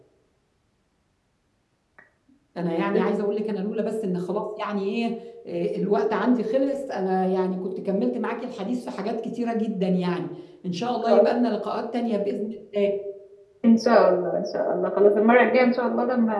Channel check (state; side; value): identical; both; correlation 1.00